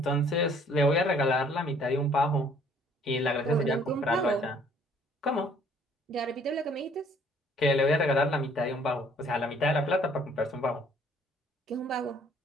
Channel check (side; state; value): both; normal; correlation 0.60